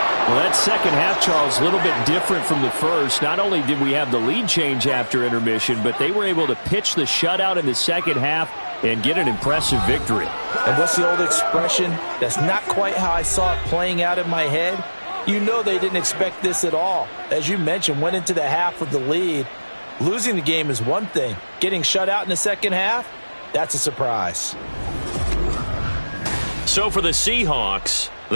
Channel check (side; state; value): both; inverted; correlation -1.00